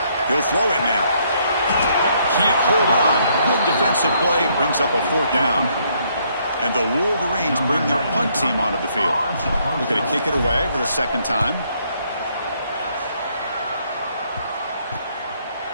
He'll throw it now. Can't hold on. Good defensive play, brings up a 4th down. And the Wolverines bring their punt team onto the field. Looking to kick it away for the 2nd time.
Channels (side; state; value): both; inverted; correlation -0.70